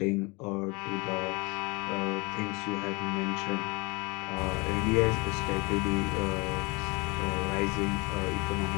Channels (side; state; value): right; quieter; 27.1 dB